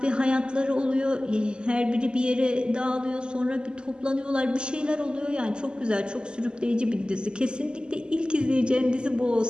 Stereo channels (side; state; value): left; late; 0.048 ms